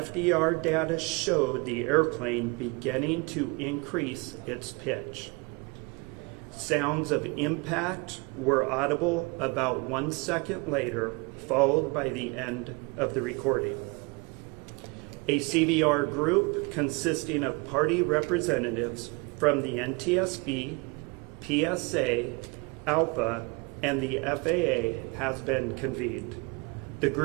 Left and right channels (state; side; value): quieter; left; 28.5 dB